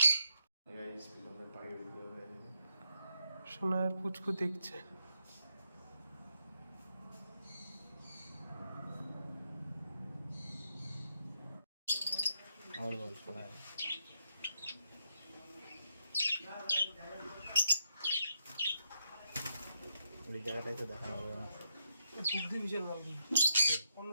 সোনার পুচকু দেখছে। আমার বল শোনায় ওই জায়গাটাই তো দেখা হবে না। বুদ্ধি বিশাল মালগুলো, অন্য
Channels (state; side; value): inverted; both; correlation -0.82